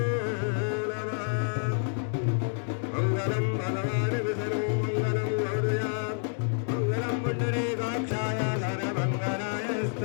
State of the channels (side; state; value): right; silent; 59 dB below the other